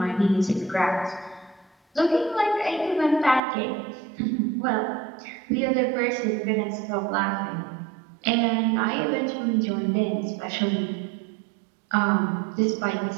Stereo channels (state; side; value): drops out; left; at 3.4 s